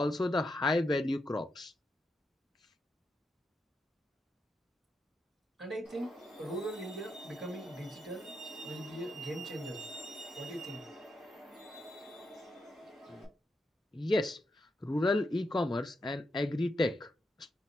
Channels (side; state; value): both; normal; correlation 0.83